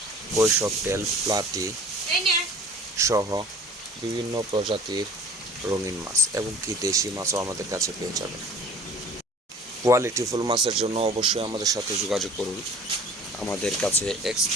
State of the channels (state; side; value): normal; both; correlation 0.45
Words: কৈশকটেল, প্লাটি সহ বিভিন্ন প্রজাতির রঙিন মাছ এবং কি দেশি মাছও আমাদের কাছে পেয়ে যাবেন। কোয়ালিটিফুল মাছের জন্য অবশ্যই আমাদের সাথে যোগাযোগ করুন। আমাদের কাছে